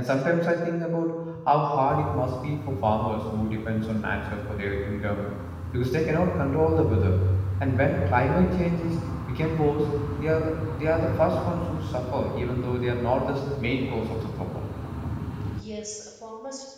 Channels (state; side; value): identical; both; correlation 1.00